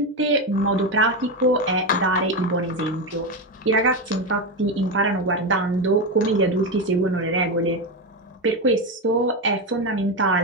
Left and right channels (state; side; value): normal; both; correlation 0.12